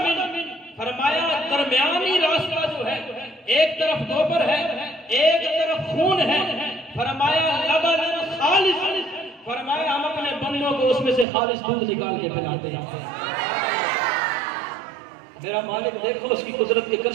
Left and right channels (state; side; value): drops out; left; at 11.2 s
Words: فرمایا درمیانی راستہ جو ہے ایک طرف گوبر ہے ایک طرف خون ہے. فرمایا لبن خالص، فرمایا ہم اپنے بندوں کو اس میں سے خالص دودھ نکال کے پلاتے ہیں. میرا مالک دیکھو اس کی قدرت کے